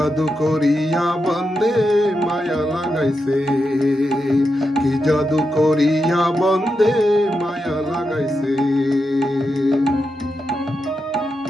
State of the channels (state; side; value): normal; both; correlation 0.87